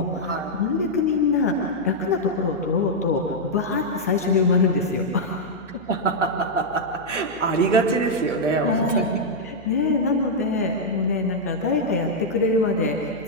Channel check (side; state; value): left; noise; hum, 24 dB below the sound